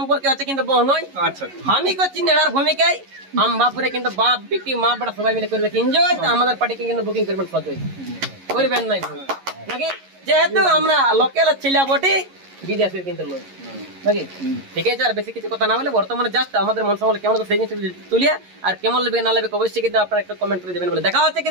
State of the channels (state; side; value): late; left; 11 ms